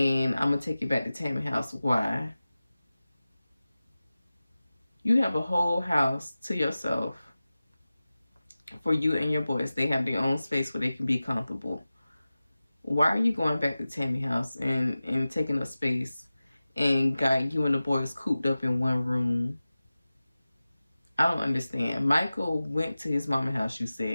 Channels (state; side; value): inverted; both; correlation -0.96